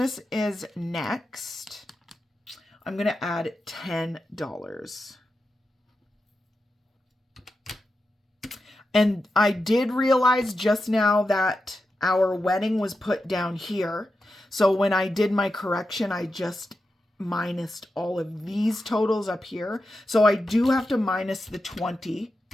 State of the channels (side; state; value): both; normal; correlation 0.90